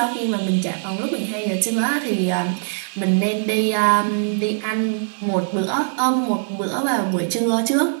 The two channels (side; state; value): left; silent; digital silence